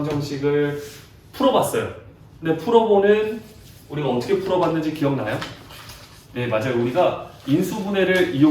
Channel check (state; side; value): identical; both; correlation 1.00